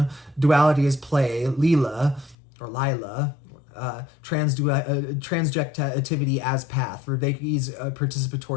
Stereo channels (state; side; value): drops out; right; at 2.4 s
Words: duality as play, Leela, or Lila, transjectivity as path, Vervaeke's